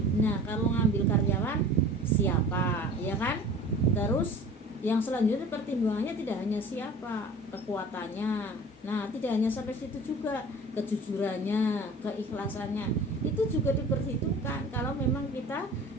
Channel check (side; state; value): both; normal; correlation 0.42